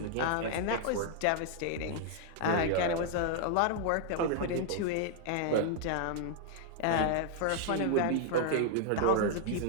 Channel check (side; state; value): both; different; correlation -0.01